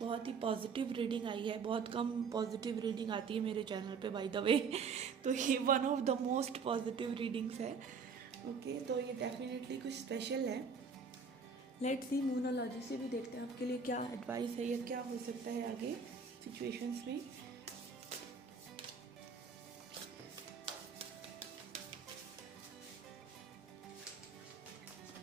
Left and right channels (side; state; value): left; quieter; 5.5 dB